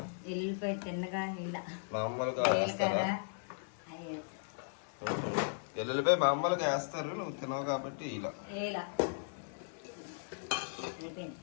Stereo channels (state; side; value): silent; right; 53 dB below the other